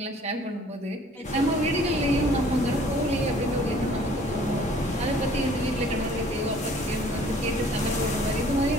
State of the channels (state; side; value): normal; both; correlation 0.55